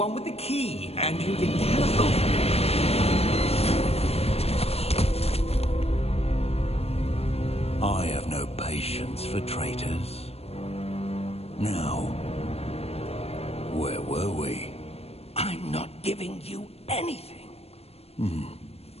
with the key, and you didn't have... I have no patience for traitors. Now, where were we? I'm not giving you anything.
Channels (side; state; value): right; late; 0.29 ms